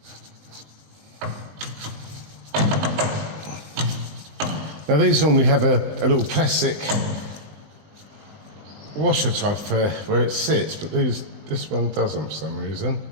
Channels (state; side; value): late; left; 20 ms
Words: Now these normally have a little plastic washer type for where it sits, but this one doesn't for some reason.